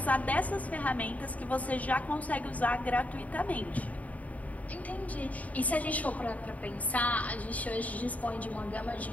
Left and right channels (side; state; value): right; late; 0.071 ms